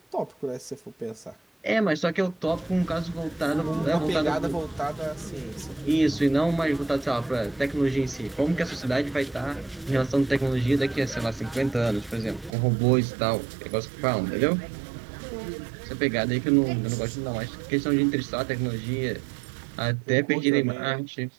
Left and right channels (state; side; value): drops out; left; at 12.6 s